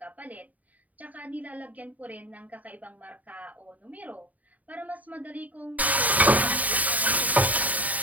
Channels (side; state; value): left; late; 0.073 ms